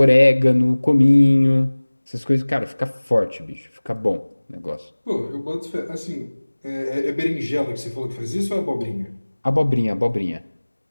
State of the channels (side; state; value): both; inverted; correlation -1.00